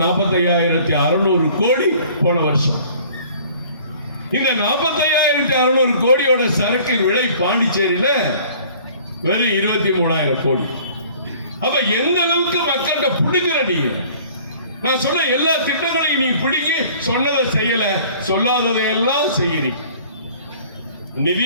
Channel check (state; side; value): inverted; both; correlation -0.51